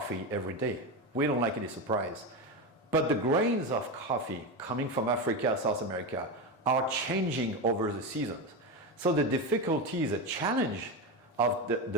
every day. We don't like any surprise. But the grains of coffee coming from Africa, South America are changing over the seasons. So the difficulty, the challenge of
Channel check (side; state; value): both; normal; correlation 0.16